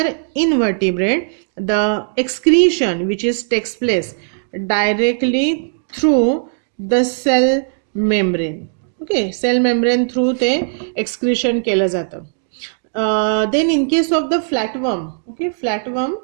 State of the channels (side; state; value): left; silent; digital silence